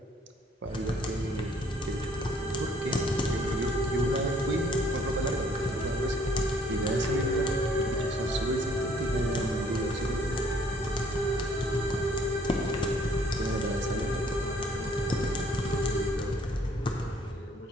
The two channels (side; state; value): both; normal; correlation 0.61